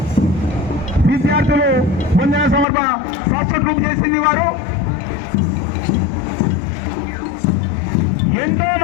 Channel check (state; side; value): drops out; right; at 2.7 s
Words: విద్యార్థులు వందన సమర్పణ సాక్షాత్కారం చేసింది. వారు ఎంతో